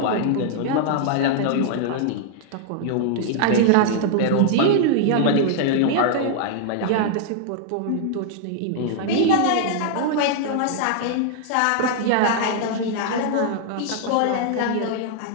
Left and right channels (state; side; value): different; both; correlation -0.01